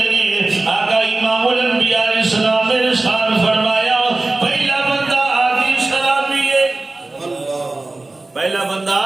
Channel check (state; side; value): quieter; left; 3.1 dB